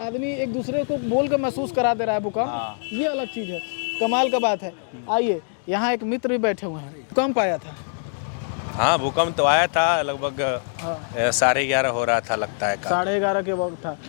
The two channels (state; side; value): silent; right; digital silence